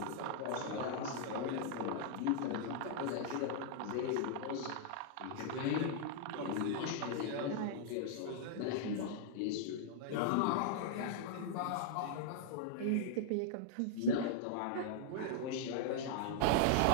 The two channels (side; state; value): both; different; correlation -0.01